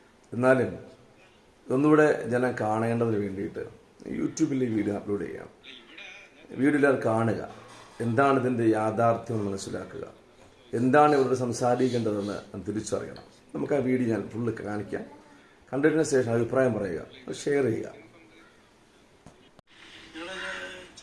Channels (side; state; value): both; identical; correlation 1.00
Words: എന്നാലും ഒന്നുകൂടെ ജനം കാണേണ്ടതിന് വേണ്ടിയിട്ട് യൂട്യൂബിൽ ഈ വീഡിയോ അപ്ലോഡ് ചെയ്യാം. വീഡിയോ കാണുക, എന്താണ് ഇതിൻ്റെ യാഥാർത്ഥ്യം മനസ്സിലാക്കുക, എന്താണ് ഇവരോട് സംസാരിക്കേണ്ടതെന്ന് തിരിച്ചറിയണം. നമുക്ക് ആ വീഡിയോ ഞാൻ ഫുള്ള് കാണിക്കാം. കണ്ടതിന് ശേഷം അഭിപ്രായം പറയുക, ഷെയർ ചെയ്യുക.